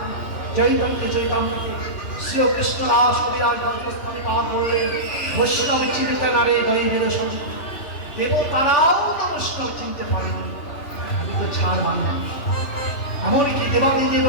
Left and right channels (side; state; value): right; late; 3.0 ms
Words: চৈতন্য চৈতন্যকে শ্রীকৃষ্ণ রাস বিরাজ দন্তস্থানে পাঠ করলেন বৈষ্ণব চিনিতে না রে দৈবের সাধু দেব তারাও না বৈষ্ণব চিনতে পারেনি। আমি তো ছাড় বাংলা এমনকি দেবাদিদেব